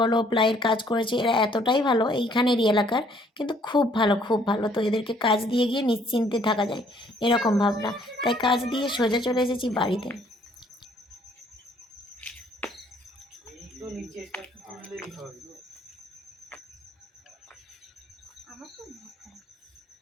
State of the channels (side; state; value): both; normal; correlation 0.63